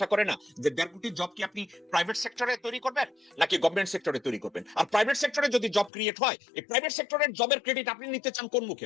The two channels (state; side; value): drops out; right; at 5.9 s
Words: করে না যে 1.5 কোটি জব কি আপনি প্রাইভেট সেক্টরে তৈরি করবেন নাকি গভর্নমেন্ট সেক্টরে তৈরি করবেন? আর প্রাইভেট সেক্টরে যদি জব ক্রিয়েট হয়, এই প্রাইভেট সেক্টরের জবের ক্রেডিট আপনি নিতে চান কোন মুখে?